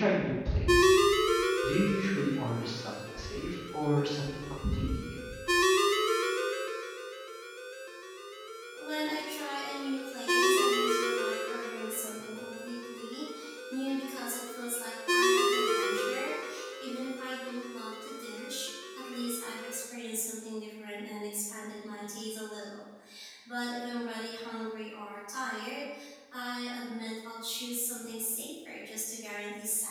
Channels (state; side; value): identical; both; correlation 1.00